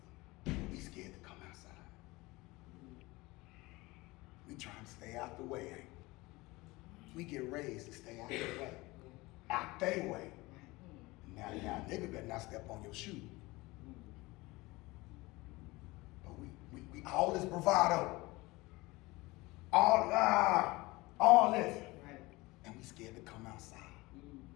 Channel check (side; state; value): right; quieter; 21.8 dB